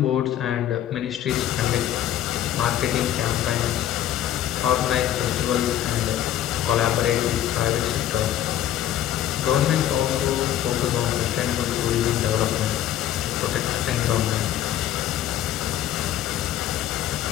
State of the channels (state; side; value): quieter; right; 11.7 dB